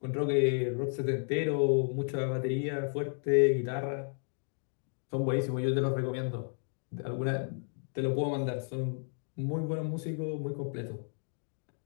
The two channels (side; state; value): right; silent; 56 dB below the other